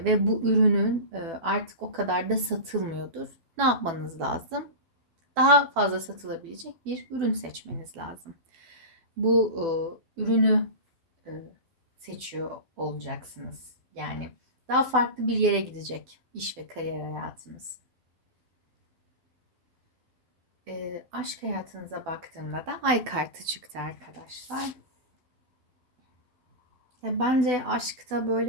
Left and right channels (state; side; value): late; left; 12 ms